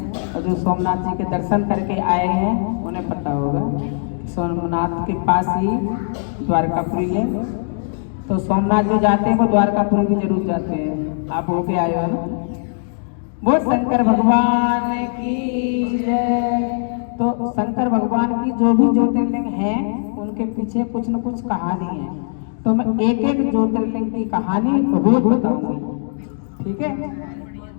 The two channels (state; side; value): silent; right; digital silence